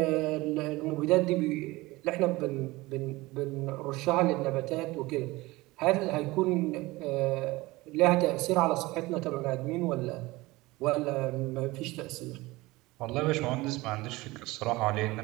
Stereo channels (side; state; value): left; quieter; 20.8 dB